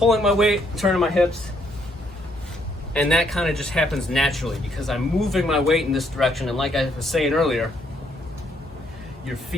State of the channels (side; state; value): both; normal; correlation 0.71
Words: my weight, turning my hips. And that kind of just happens naturally because I'm moving my weight in this direction. And like I was saying earlier, your